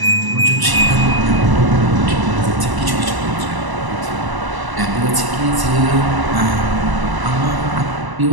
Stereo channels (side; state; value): left; late; 1.0 ms